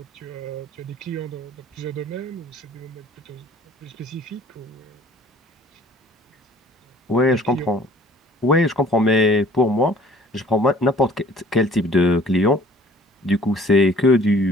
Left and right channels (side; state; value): both; normal; correlation 0.53